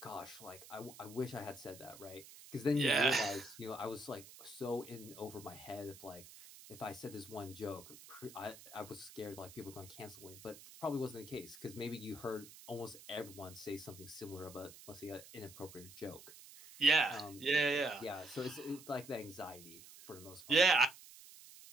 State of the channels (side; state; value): right; noise; hiss, 17 dB below the sound